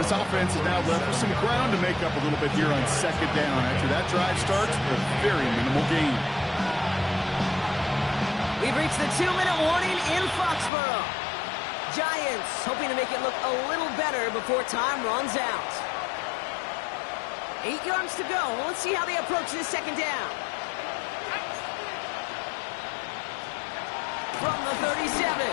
This offense is now left with some ground to make up a little bit here on second down. After that drive starts with a very minimal gain. We've reached the 2-minute warning in Foxborough. Giants hoping to make it look a little better before time runs out. 8 yards to go. Well, let's see how they approach this second down. From the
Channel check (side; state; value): right; drops out; at 10.7 s